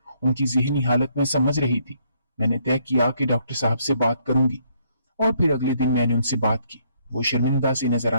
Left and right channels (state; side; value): inverted; both; correlation -0.69